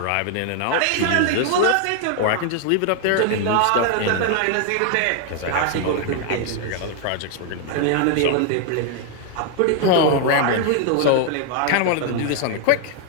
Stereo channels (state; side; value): different; both; correlation 0.00